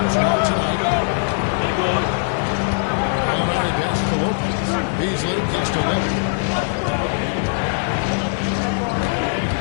now tonight. Gallinari pass to Lopez. Beasley kicks to Lillard.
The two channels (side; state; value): right; silent; 57 dB below the other